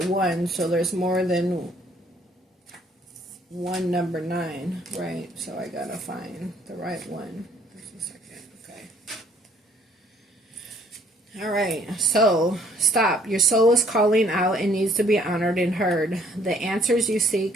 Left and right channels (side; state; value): both; normal; correlation 0.62